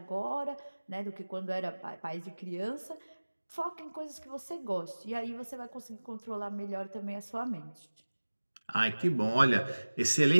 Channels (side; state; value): both; inverted; correlation -1.00